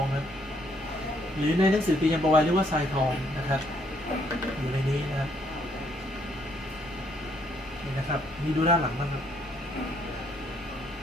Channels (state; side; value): noise; right; hum, 25 dB below the sound